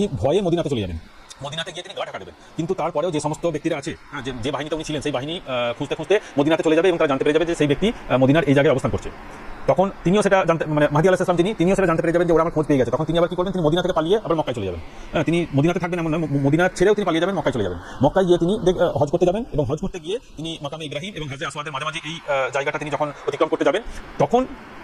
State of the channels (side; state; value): both; identical; correlation 1.00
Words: ভয়ে মদিনাতে চলে যাবেন, মদিনাতে গিয়ে তিনি গা ঢাকা দেবেন। কিন্তু তারপরেও যে সমস্ত ব্যক্তিরা আছে, যে বাহিনীতে উনি ছিলেন, সেই বাহিনী খুঁজতে মদিনাতে চলে যাবে এবং তারা জানতে পেরে যাবে যে সেই ব্যক্তি মদিনার এই জায়গায় অবস্থান করছে। তখন তিনিও সেটা জানতে, মানে মাহদী আলাইহিস সালাম তিনিও সেটা জানতে পেরে যাবেন যে ওরা আমার খোঁজ পেয়ে গেছে। তখন তিনি আবার কি করবেন? তিনি মদিনা থেকে পালিয়ে আবার মক্কায় চলে যাবেন। তিনি মদিনাতে থাকবেন এমন নয়, মদিনা ছেড়েও তিনি পালিয়ে যাবেন, মক্কায় চলে যাবেন। মক্কায় গিয়ে তিনি হজ করতে যাবেন এবং হজ করতে গিয়ে তিনি মাকামে ইব্রাহিম এবং হাজরে আসওয়াদের মাঝামাঝি এই জায়গাটা তিনি যখন অতিক্রম করতে যাবেন, তখন